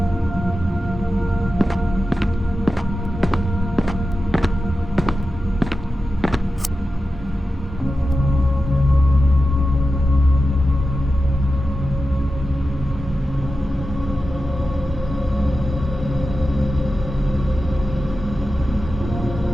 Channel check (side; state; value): both; normal; correlation 0.92